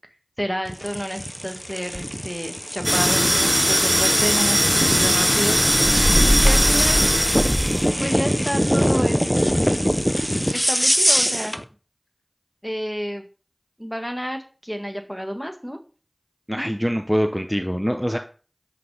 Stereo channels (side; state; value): both; identical; correlation 1.00